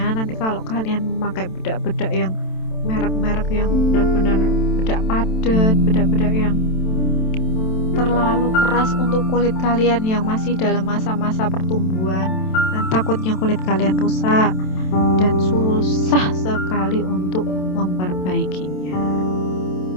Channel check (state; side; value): late; right; 27 ms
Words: kalau kalian memakai bedak-bedak yang merek-merek yang benar-benar bedak padat, bedak-bedak yang terlalu keras untuk kulit kalian yang masih dalam masa-masa pertumbuhan, dan takutnya kulit kalian rusak dan susah sekali untuk memperbaikinya.